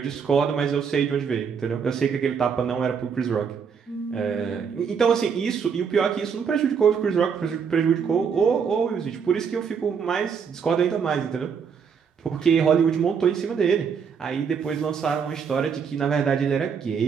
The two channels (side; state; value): left; quieter; 6.6 dB